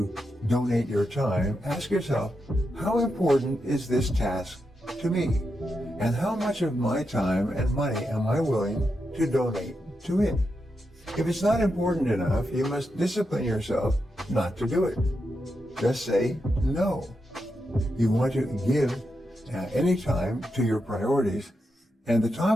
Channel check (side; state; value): both; normal; correlation 0.86